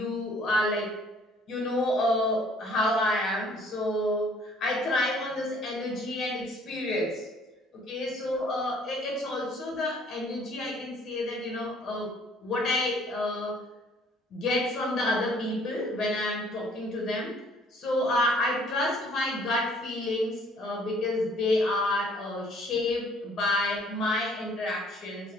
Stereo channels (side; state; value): both; normal; correlation 0.58